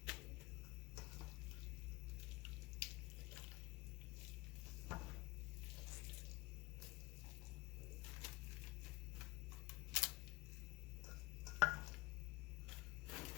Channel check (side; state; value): right; quieter; 22.1 dB